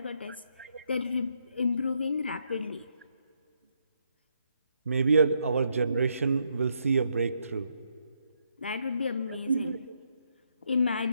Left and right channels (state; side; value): inverted; both; correlation -0.77